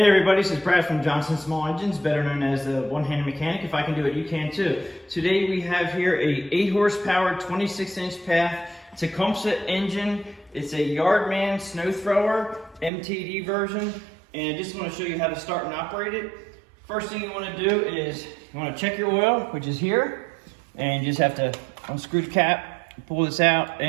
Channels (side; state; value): left; drops out; at 12.9 s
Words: everybody, this is Brad from Johnson Small Engines, better known as the one-handed mechanic. If I can do it, you can too. Today we have here a 8 horsepower, 26-inch path Tecumseh engine. It's a Yardman snow thrower, MTD version, and I just want to show you how to start and operate it. First thing you want to do is you want to check your oil, which is here, and you just have to unscrew the cap, pull this out,